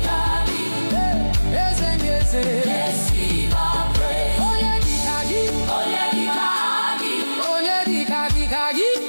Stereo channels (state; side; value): inverted; both; correlation -1.00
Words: Eze ndị eze. Receive our praise. Onyedikagi, Onyedikagi, Onyedikagi,